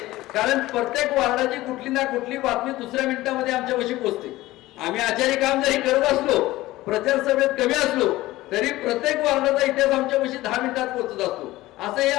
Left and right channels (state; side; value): quieter; right; 17.5 dB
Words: कारण प्रत्येक वार्डाची कुठली ना कुठली बातमी दुसऱ्या मिनिटामध्ये आमच्यापाशी पोहोचते. आम्ही आचार्य काम जरी करत असलो, प्रचार सभेत कमी असलो तरी प्रत्येक वार्डाचा इतिहास आमच्यापाशी 10 मिनिटात पोहोचत असतो. असं हे